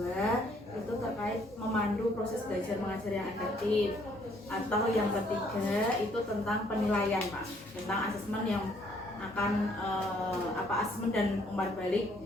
itu terkait memandu proses belajar mengajar yang efektif. Atau yang ketiga itu tentang penilaian Pak, tentang asesmen yang akan asesmen dan umpan balik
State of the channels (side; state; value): both; normal; correlation 0.65